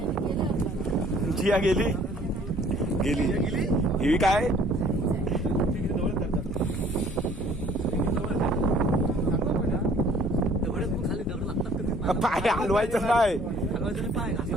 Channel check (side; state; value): both; normal; correlation 0.56